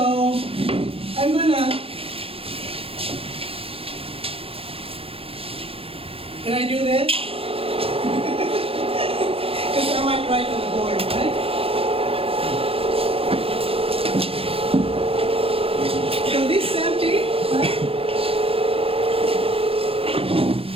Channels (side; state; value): left; late; 0.27 ms